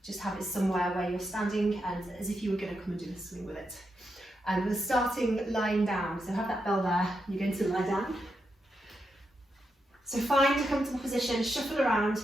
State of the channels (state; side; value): normal; both; correlation 0.84